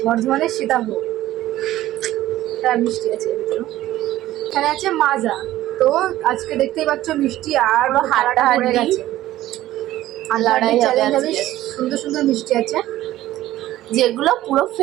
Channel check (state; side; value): quieter; left; 14.8 dB